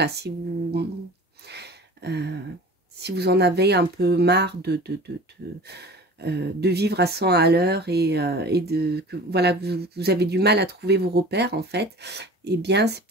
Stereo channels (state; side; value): normal; both; correlation 0.40